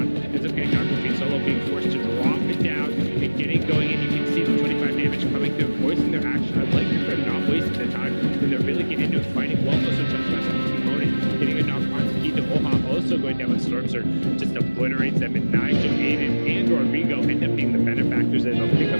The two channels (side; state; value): both; inverted; correlation -1.00